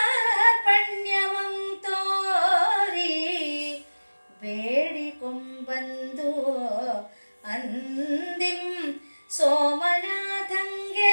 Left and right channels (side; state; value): both; inverted; correlation -1.00